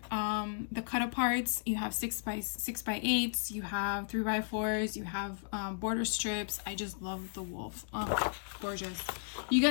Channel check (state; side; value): silent; right; digital silence